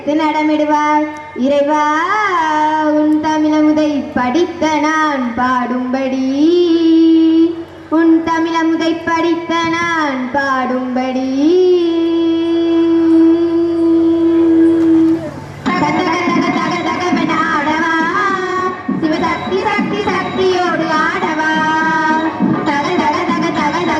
நடமிடுவார் இறைவா, உன் தமிழமுதை படித்த நான் பாடும்படி, உன் தமிழமுதை படித்த நான் பாடும்படி.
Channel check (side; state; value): both; identical; correlation 1.00